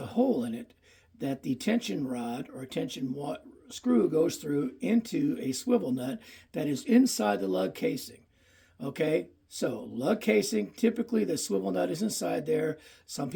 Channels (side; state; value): both; identical; correlation 1.00